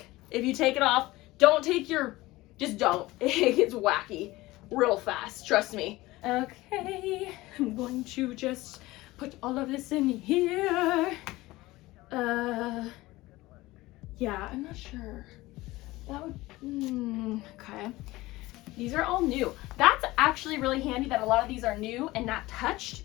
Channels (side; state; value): right; quieter; 19.1 dB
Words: If you take it off, don't take your, just don't. It gets wacky real fast, trust me. Okay, I'm going to just put all of this in here. Yeah, I'm not sure. That would, okay. These are all new. That's actually really handy that a lot of these are new and not